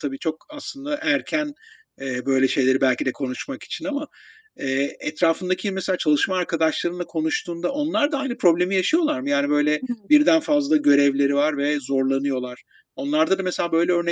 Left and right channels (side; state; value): both; identical; correlation 1.00